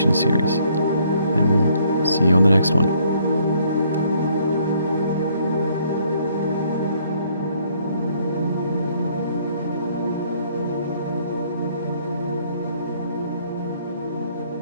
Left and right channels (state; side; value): inverted; both; correlation -0.65